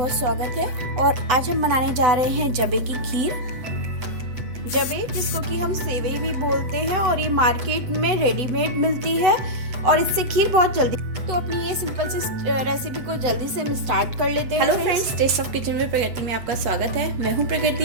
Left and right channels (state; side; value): late; left; 7.9 ms